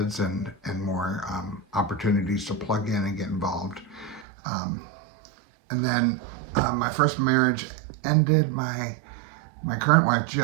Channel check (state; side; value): drops out; left; at 4.2 s